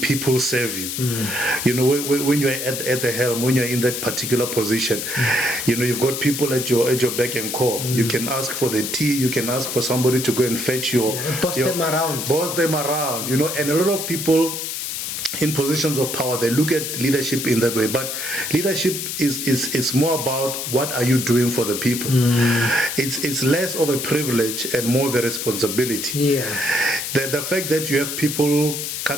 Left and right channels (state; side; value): noise; left; hiss, 4 dB below the sound